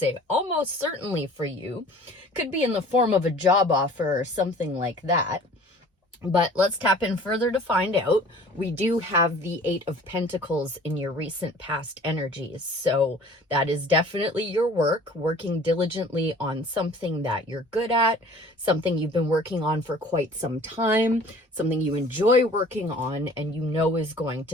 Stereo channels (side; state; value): both; normal; correlation 0.48